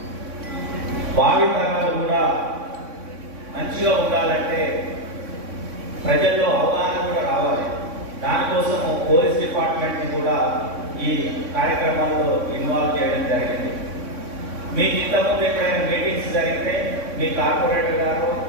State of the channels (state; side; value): late; left; 3.6 ms